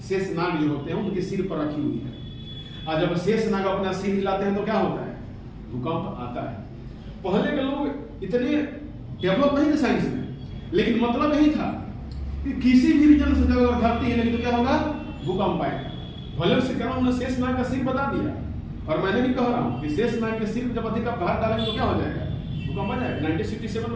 जो होते हैं उनके सिर पर रखी हुई है। और जब शेषनाग अपना सिर हिलाते हैं तो क्या होता है, भूकंप आता है। पहले के लोग इतने डेवलप नहीं थे साइंस में, लेकिन मतलब यही था कि किसी भी रीजन से जब धरती हिलेगी तो क्या होगा, भूकंप आएगा। भले से कह रहा हूं, शेषनाग का सिर बता दिया, और मैंने भी कह रहा हूं कि शेषनाग के सिर जब अधिक भार डालेंगे तो क्या हो जाएगा, भूकंप आ जाएगा। 1967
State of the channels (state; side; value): identical; both; correlation 1.00